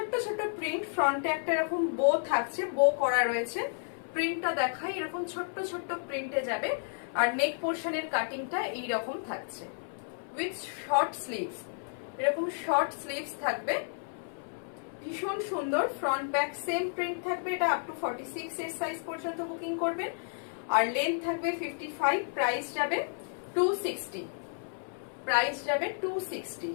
ছোট্ট প্রিন্ট, ফ্রন্টে একটা এরকম বো থাকছে, বো করা রয়েছে। প্রিন্টটা দেখাই, এরকম ছোট্ট ছোট্ট প্রিন্টে যাবে। আর নেক পোর্শনের কাটিংটা এইরকম থাকছে উইথ শর্ট স্লিভস, এরকম শর্ট স্লিভস থাকবে, ভীষণ সুন্দর। ফ্রন্ট ব্যাক সেম প্রিন্ট থাকবে, এটা আপ টু 46 এর সাইজ পর্যন্ত বুকিং করবেন। আর লেন্থ থাকবে 55, প্রাইস যাবে 260, প্রাইস যাবে 260।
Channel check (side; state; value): right; silent; 57 dB below the other